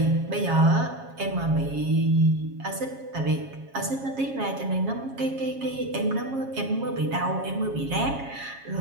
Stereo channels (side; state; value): left; late; 7.3 ms